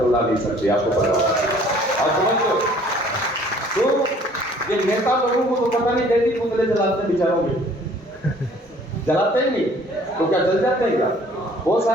उड़ा नहीं सकती, आपको पता होगा। और समझो, तो ये नेता लोगों को तो पता नहीं कैसी पुतले जलाते हैं बेचारों के, जलाते ही नहीं तो क्या जल जाते हैं क्या? बहुत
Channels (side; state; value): both; normal; correlation 0.55